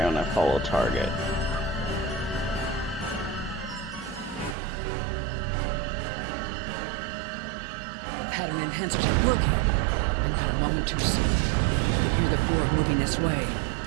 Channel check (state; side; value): drops out; left; at 4.5 s